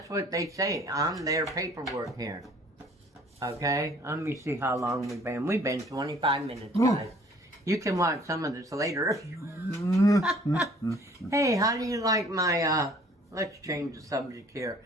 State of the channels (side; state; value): both; normal; correlation 0.55